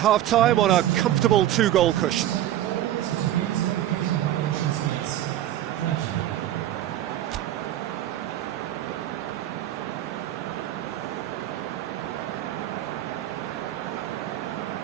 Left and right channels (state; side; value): quieter; left; 12.9 dB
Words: on a comfortable two-goal cushion.